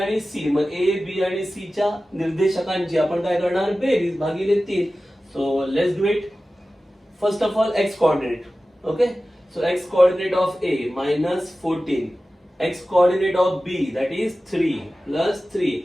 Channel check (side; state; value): both; normal; correlation 0.95